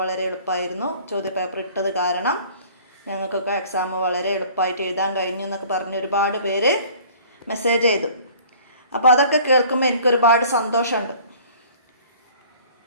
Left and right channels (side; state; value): both; inverted; correlation -0.50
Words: വളരെ എളുപ്പമായിരുന്നു, ചോദ്യപേപ്പർ ഇട്ടത് കാരണം ഞങ്ങൾക്കൊക്കെ എക്സാം വളരെ എളുപ്പമായിട്ട് എഴുതാൻ കഴിഞ്ഞു എന്നൊക്കെ പറഞ്ഞ് ഒരുപാട് പേര് മെസ്സേജ് ചെയ്തു. അപ്പോൾ അതൊക്കെ കേൾക്കുമ്പോൾ എനിക്കൊരുപാട് സന്തോഷമുണ്ട്.